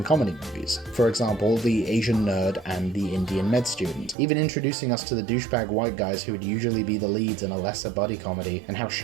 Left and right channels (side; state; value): left; drops out; at 4.2 s